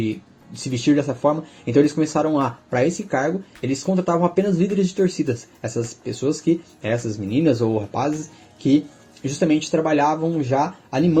se vestir dessa forma. Então eles começaram para esse cargo, eles contratavam apenas líderes de torcidas. Essas pessoas essas meninas ou rapazes que justamente trabalhavam já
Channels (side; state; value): both; identical; correlation 1.00